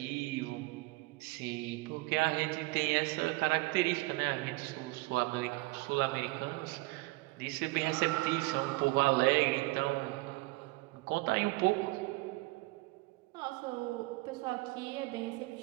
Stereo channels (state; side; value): quieter; left; 22.4 dB